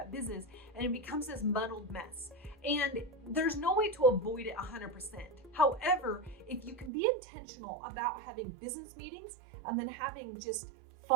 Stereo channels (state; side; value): drops out; left; at 6.9 s